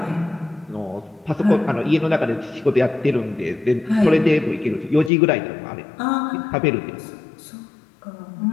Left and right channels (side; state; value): right; drops out; at 5.1 s